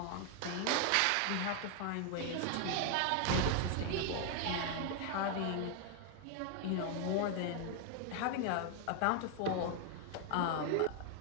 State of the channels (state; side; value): different; both; correlation 0.00